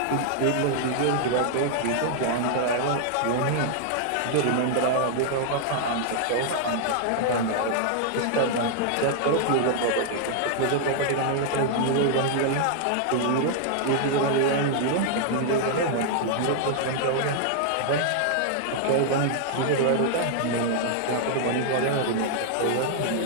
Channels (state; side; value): different; both; correlation -0.01